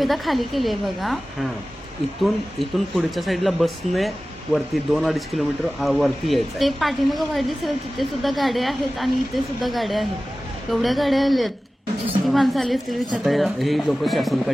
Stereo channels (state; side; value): normal; both; correlation 0.96